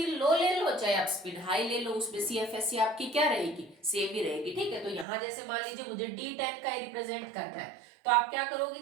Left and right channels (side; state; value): left; drops out; at 5.1 s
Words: लो ले लो, चाहे आप स्पिन हाई ले लो, उसमें CFSC आपकी क्या रहेगी, सेम ही रहेगी। ठीक है, तो यहाँ जैसे मान लीजिए मुझे D10 का रिप्रेजेंट करना है, तो आप क्या करोगे